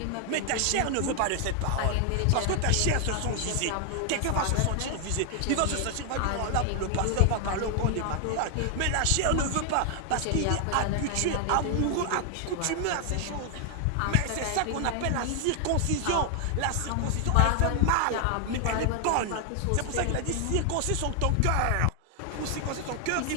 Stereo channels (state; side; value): different; both; correlation 0.00